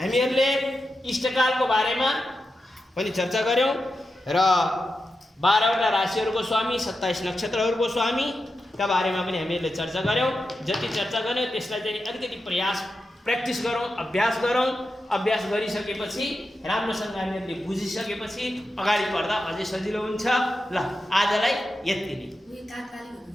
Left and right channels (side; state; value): both; normal; correlation 0.89